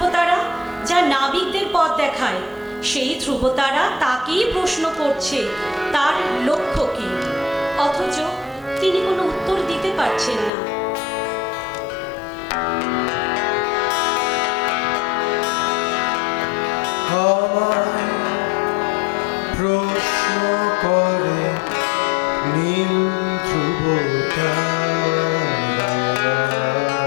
যা নাবিকদের পথ দেখায়, সেই ধ্রুবতারা তাকেই প্রশ্ন করছে তার লক্ষ্য কী, অথচ তিনি কোনো উত্তর দিতে পারছেন না। আমায় প্রশ্ন করে নীল ধ্রুবতারা,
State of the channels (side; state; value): right; drops out; at 10.5 s